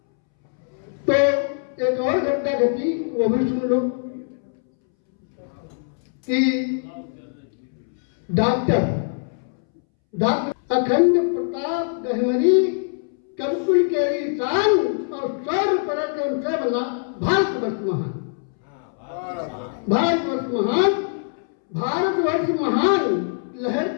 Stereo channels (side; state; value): right; silent; 64 dB below the other